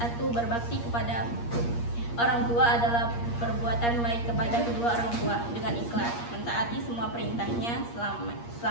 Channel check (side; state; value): right; late; 8.5 ms